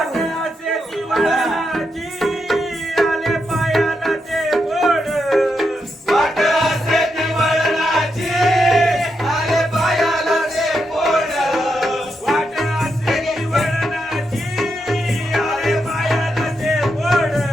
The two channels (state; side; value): normal; both; correlation 0.83